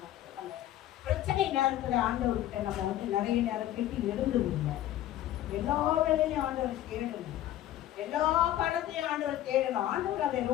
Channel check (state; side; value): quieter; right; 13.1 dB